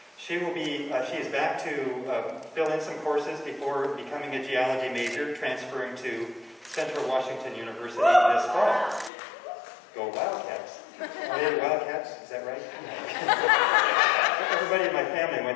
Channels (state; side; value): drops out; right; at 9.1 s